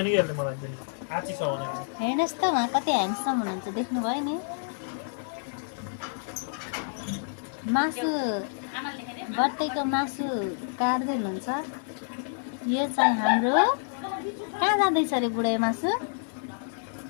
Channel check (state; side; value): silent; right; digital silence